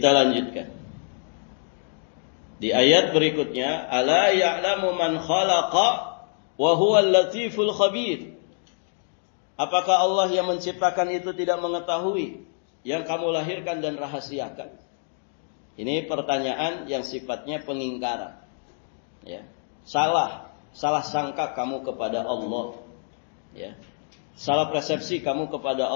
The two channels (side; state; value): right; silent; digital silence